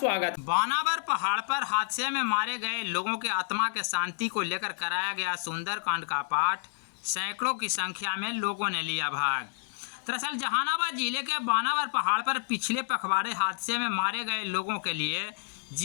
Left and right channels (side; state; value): right; silent; digital silence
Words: बानावर पहाड़ पर हादसे में मारे गए लोगों के आत्मा के शांति को लेकर कराया गया सुंदरकांड का पाठ सैकड़ों की संख्या में लोगों ने लिया भाग। दरअसल जहानाबाद जिले के बानावर पहाड़ पर पिछले पखवाड़े हादसे में मारे गए लोगों के लिए